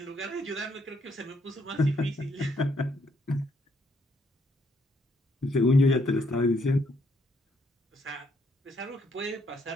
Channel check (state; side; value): normal; both; correlation 0.72